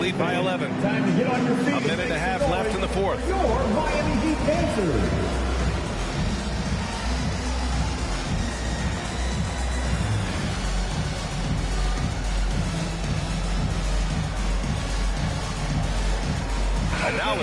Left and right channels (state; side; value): identical; both; correlation 1.00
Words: by 11. A minute and a half left in the fourth. Your Miami Heat Panthers.